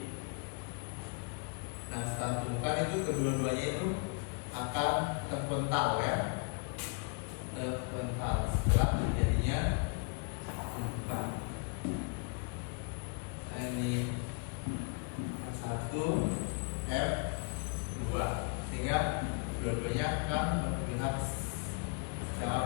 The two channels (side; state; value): right; quieter; 35.6 dB